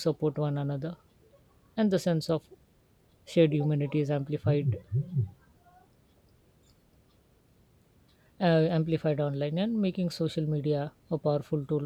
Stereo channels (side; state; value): both; identical; correlation 1.00